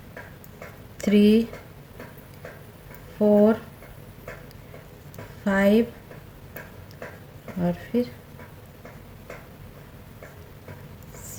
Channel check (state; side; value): identical; both; correlation 1.00